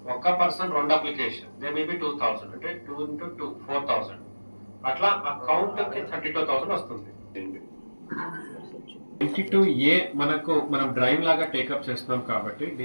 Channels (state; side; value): inverted; both; correlation -1.00